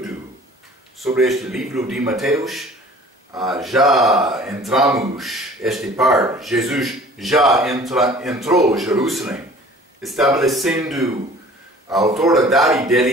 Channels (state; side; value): normal; both; correlation 0.48